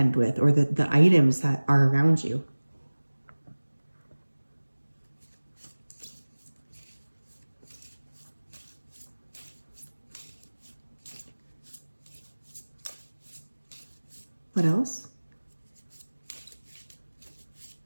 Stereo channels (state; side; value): inverted; both; correlation -1.00